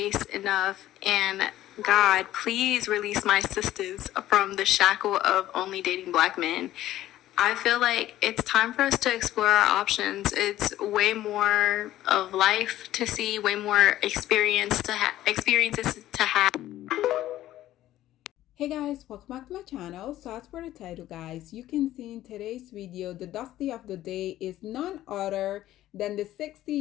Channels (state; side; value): quieter; right; 14.0 dB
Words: enough, and God, please release my sisters from the shackle of only dating black men. I feel like it's time for us to explore our options. It's way more of life to see, way more experiences to have. Hey guys, welcome back to my channel. So as for the title, guys, you can see in today's video, the Dusty of the day is none other than the